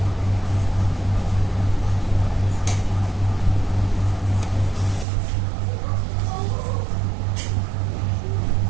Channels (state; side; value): drops out; left; at 5.1 s